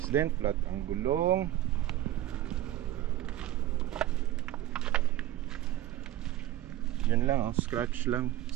din, flat ang gulong. Yun lang oh, scratch lang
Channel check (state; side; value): quieter; left; 14.0 dB